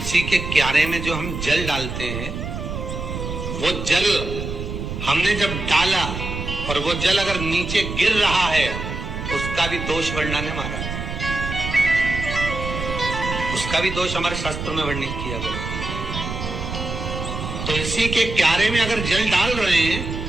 के क्यारे में जो हम जल डालते हैं, वो जल हमने जब डाला और वो जल अगर नीचे गिर रहा है, उसका भी दोष वर्णन है महाराज। उसका भी दोष हमारे शास्त्र में वर्णित किया गया। तुलसी के क्यारे में अगर जल डाल रहे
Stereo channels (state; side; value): noise; right; rumble, 6 dB below the sound